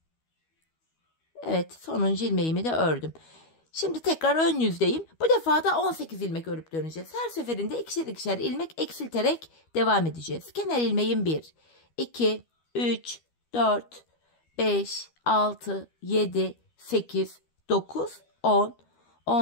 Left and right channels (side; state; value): right; late; 12 ms